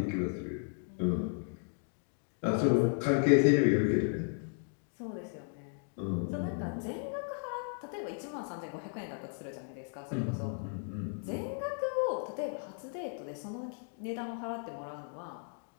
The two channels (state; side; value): silent; right; 54 dB below the other